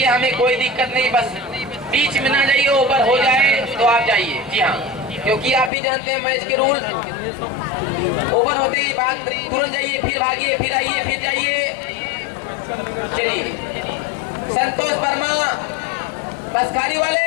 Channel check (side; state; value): right; drops out; at 5.7 s